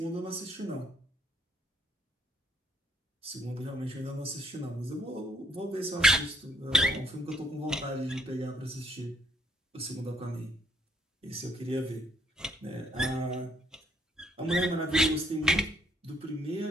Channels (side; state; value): both; normal; correlation 0.68